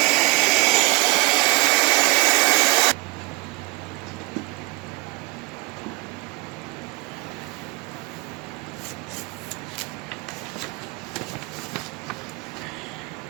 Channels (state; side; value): quieter; left; 24.6 dB